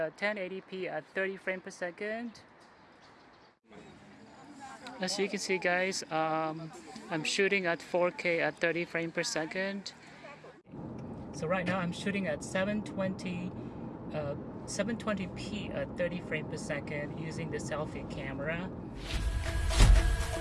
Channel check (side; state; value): both; identical; correlation 1.00